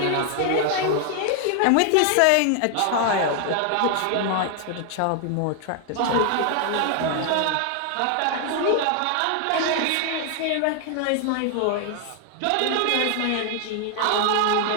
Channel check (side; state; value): both; different; correlation 0.00